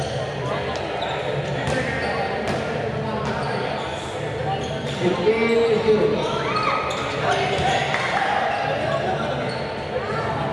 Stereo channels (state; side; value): identical; both; correlation 1.00